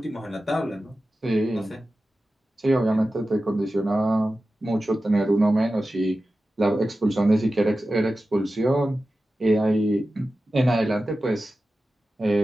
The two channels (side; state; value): both; normal; correlation 0.94